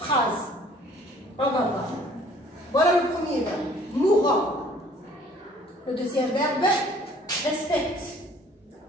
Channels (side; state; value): both; normal; correlation 0.55